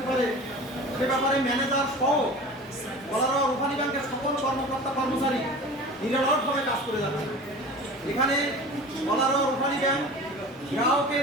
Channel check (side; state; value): both; normal; correlation 0.37